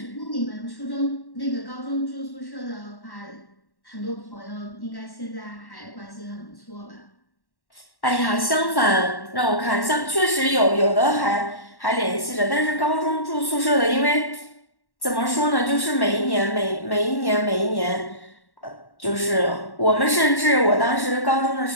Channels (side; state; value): right; late; 1.1 ms